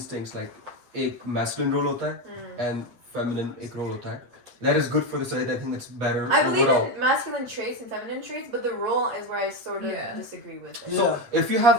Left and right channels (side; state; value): left; late; 8.4 ms